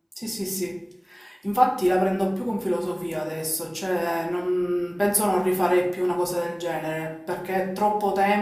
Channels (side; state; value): both; identical; correlation 1.00